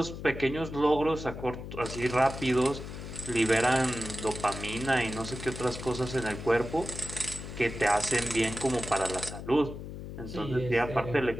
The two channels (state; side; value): noise; left; hum, 9 dB below the sound